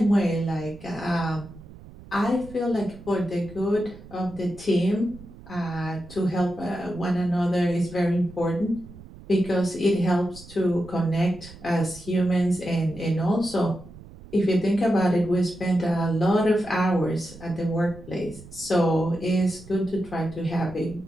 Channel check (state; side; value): noise; right; rumble, 18 dB below the sound